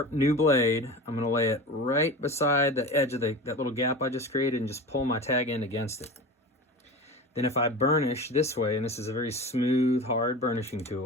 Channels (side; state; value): both; normal; correlation 0.31